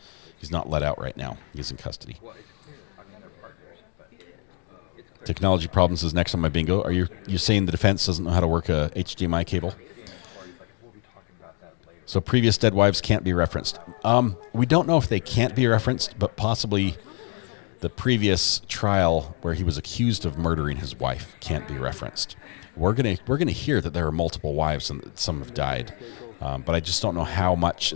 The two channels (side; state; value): right; quieter; 37.0 dB